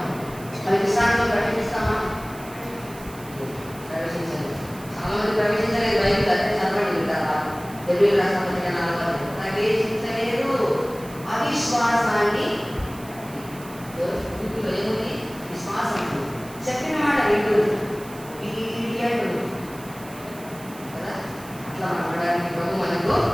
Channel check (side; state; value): right; noise; hiss, 19 dB below the sound